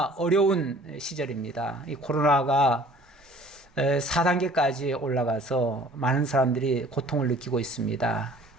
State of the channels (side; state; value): both; normal; correlation 0.52